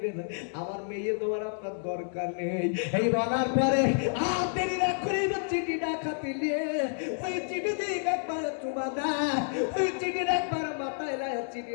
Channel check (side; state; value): right; silent; 58 dB below the other